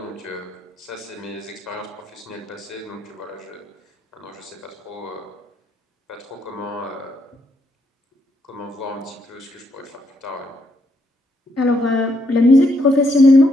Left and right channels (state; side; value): normal; both; correlation 0.75